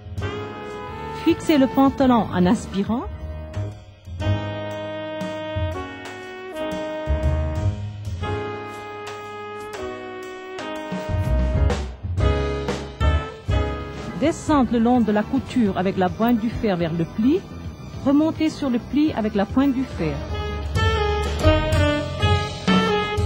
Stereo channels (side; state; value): both; identical; correlation 1.00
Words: Fixez le pantalon en aspirant. Descendre le long de la couture avec la pointe du fer vers le pli. Remonter sur le pli avec la pointe du fer.